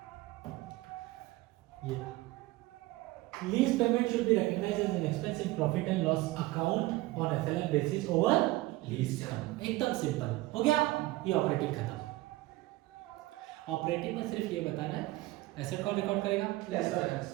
ये lease payment should be recognised as an expense in profit and loss account on FLN basis over lease term. एकदम सिंपल हो गया। ये ऑपरेटिंग खत्म। ऑपरेटिंग में सिर्फ ये बताना है एसेट कौन रिकॉर्ड करेगा? लेसर।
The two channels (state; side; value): quieter; left; 18.9 dB